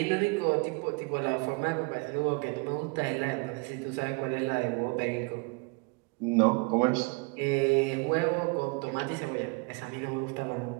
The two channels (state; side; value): quieter; left; 31.0 dB